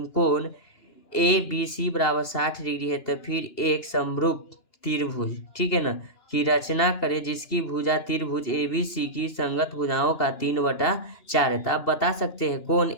कोण ABC बराबर 60 डिग्री है। तो फिर एक समरूप त्रिभुज, ठीक है ना, की रचना करें जिसकी भुजा त्रिभुज ABC की संगत भुजाओं का 3/4 है। तो आप बता सकते हैं कोण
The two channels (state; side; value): late; right; 2.9 ms